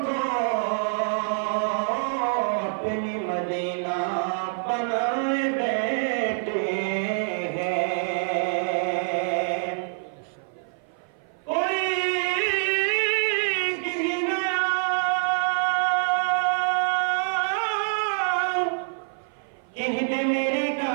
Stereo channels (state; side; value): silent; left; 55 dB below the other